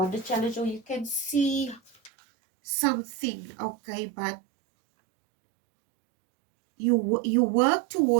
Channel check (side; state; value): left; drops out; at 2.1 s